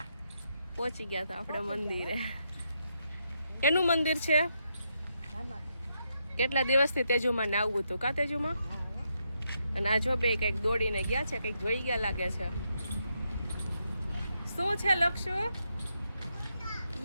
પહોંચી ગયા તો આપણે મંદિરે. એનું મંદિર છે? કેટલા દિવસથી તેજુમાં ને આવવું હતું કા તેજુમાં? અને આ જો બે કંઈક દોડીને ગયા છે, કંઈક જોઈ ગયા લાગે છે. શું છે લક્ષુ?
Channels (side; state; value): both; inverted; correlation -0.81